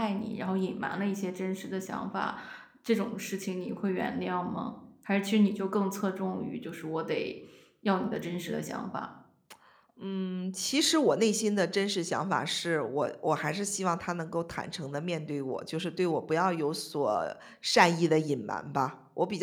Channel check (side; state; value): both; identical; correlation 1.00